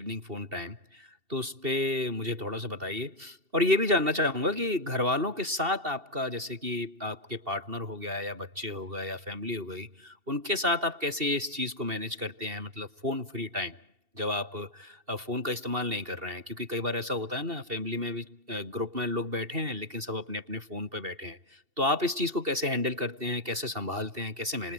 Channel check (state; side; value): late; left; 2.7 ms